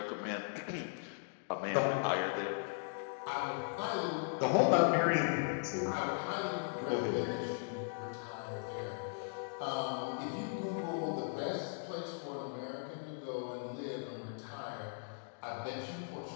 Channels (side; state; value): right; silent; digital silence